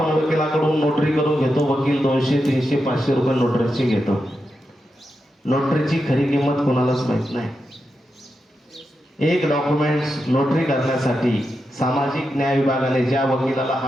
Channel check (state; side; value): normal; both; correlation 0.87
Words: वकिलाकडून नोटरी करून घेतो. वकील 200, 300, 500 रुपये नोटरीची घेतो. नोटरीची खरी किंमत कोणालाच माहित नाही. एक डॉक्युमेंट्स नोटरी करण्यासाठी सामाजिक न्याय विभागाने ज्या वकिलाला